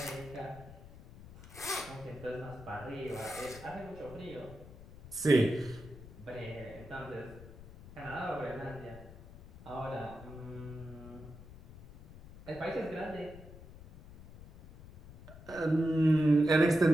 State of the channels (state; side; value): noise; left; rumble, 17 dB below the sound